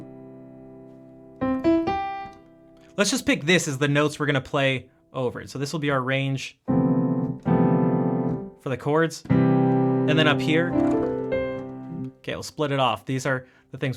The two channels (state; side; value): identical; both; correlation 1.00